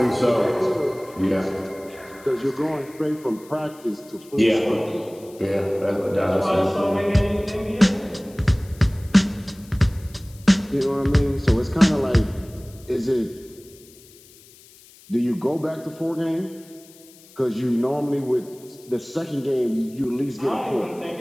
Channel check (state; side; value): noise; left; hiss, 24 dB below the sound